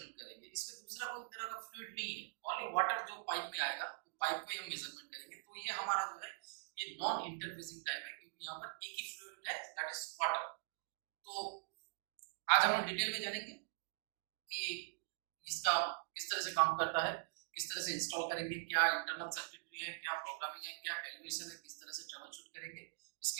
करेंगे। इसमें दूसरा कोई तरह का फ्लूइड नहीं है, ओनली वाटर जो पाइप में आएगा तो पाइप को ही हम मेजरमेंट करेंगे। तो ये हमारा जो है ये नॉन इंटरफेसिंग टाइप है, क्योंकि यहाँ पर एक ही फ्लूइड है, दैट इज वाटर। तो आज हम लोग डिटेल में जानेंगे कि इसका किस तरह से काम करता है, किस तरह से इंस्टॉल करेंगे, क्या इंटरनल सर्किटरी है, क्या प्रोग्रामिंग है, क्या कैलकुलेशन है, किस तरह से ट्रबल शूट करेंगे,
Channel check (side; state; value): left; silent; digital silence